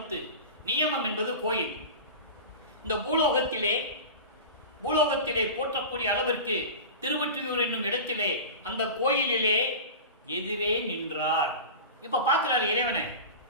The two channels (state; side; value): inverted; both; correlation -0.30